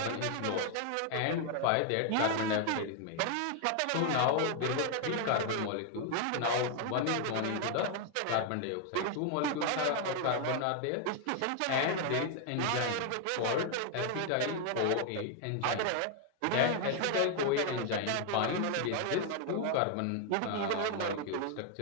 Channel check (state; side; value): different; both; correlation 0.00